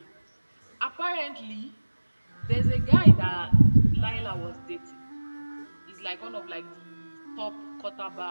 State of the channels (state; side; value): inverted; both; correlation -1.00